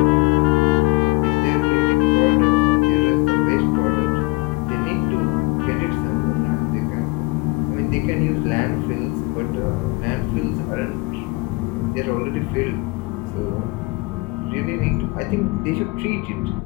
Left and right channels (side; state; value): right; quieter; 26.7 dB